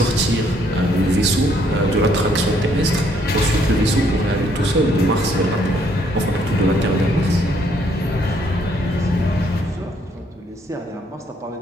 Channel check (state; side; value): normal; both; correlation 0.68